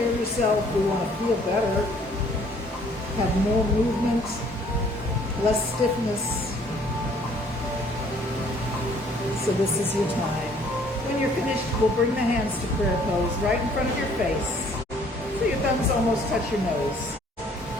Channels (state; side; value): normal; both; correlation 0.59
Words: of yourself. We want to feel better, have more movement, less stiffness. So this is your time. When you're finished, we'll bring the hands to prayer pose right in front of your face. So your thumbs almost touch your nose.